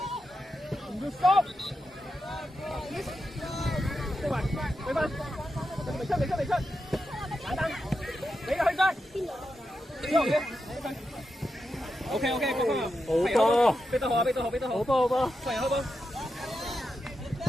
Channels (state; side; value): normal; both; correlation 0.87